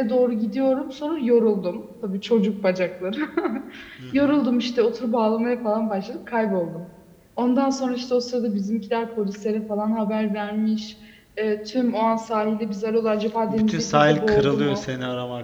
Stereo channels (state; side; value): identical; both; correlation 1.00